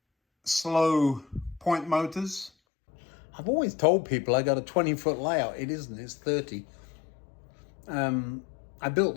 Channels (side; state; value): right; drops out; at 2.5 s